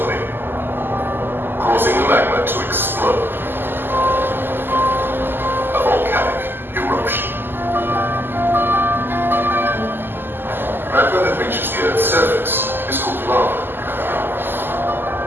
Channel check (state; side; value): late; left; 0.096 ms